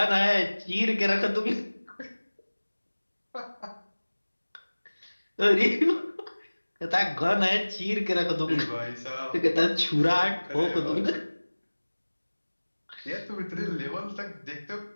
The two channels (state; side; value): inverted; both; correlation -1.00